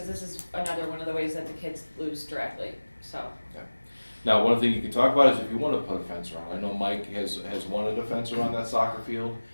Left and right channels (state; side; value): inverted; both; correlation -1.00